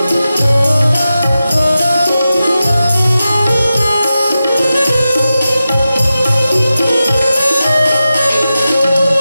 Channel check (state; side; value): inverted; both; correlation -0.92